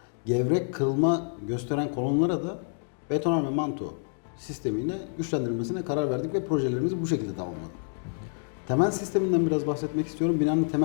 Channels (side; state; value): right; silent; digital silence